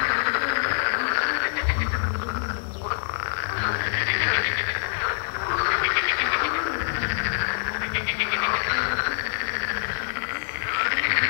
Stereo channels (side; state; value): right; silent; 62 dB below the other